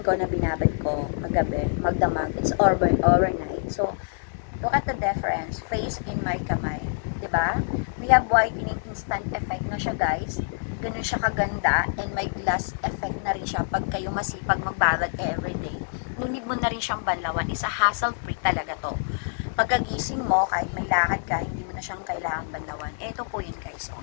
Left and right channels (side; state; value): right; silent; digital silence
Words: na binabad ko magabi, magdamag. It's overnight. So, look at the difference. Face in my kamay. 'Di ba? We have whitening instant effect na siya, guys. Ganun siya kaganda. And may glass effect na rin siya pag kayo masipag magbabad everyday. Nunid mo na rin siyang banlawan. Isa hassle-free talaga to. Pagkagising mo, kahit may lakad ka, hindi mo na siyang kailangang banlawan. Ito po yun, guys. So,